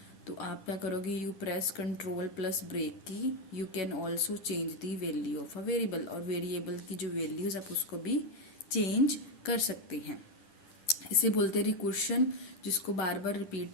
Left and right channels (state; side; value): late; right; 10 ms